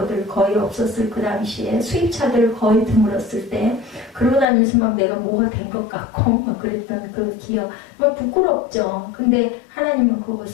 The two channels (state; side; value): drops out; right; at 4.5 s